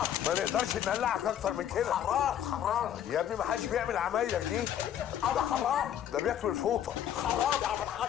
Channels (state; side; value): quieter; right; 10.2 dB